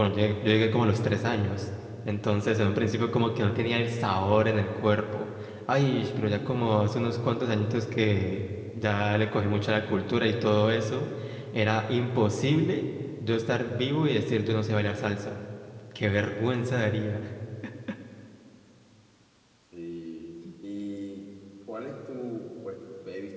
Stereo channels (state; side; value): identical; both; correlation 1.00